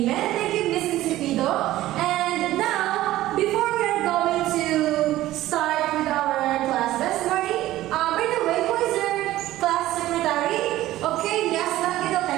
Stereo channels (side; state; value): left; quieter; 15.3 dB